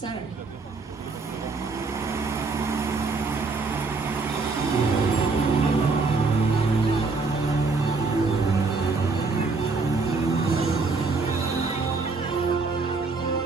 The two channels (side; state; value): left; quieter; 4.1 dB